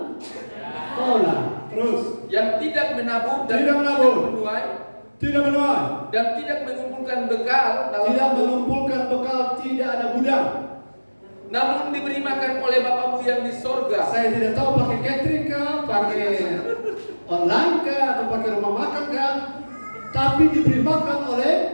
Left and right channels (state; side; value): inverted; both; correlation -1.00